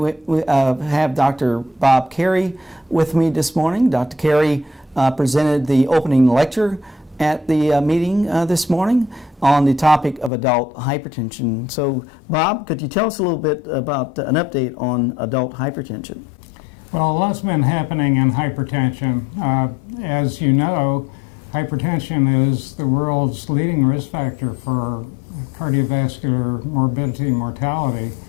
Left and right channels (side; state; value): right; drops out; at 10.3 s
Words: Dr. Bob Carey with me this morning. Dr. Carey presented the opening lecture at the meeting this morning on the topic of adult hypertension. So Bob, could you tell us a little bit about an update on adult hypertension? Well, a lot's been happening in hypertension. As you know, hypertension is the world's leading risk factor for cardiovascular morbidity and mortality,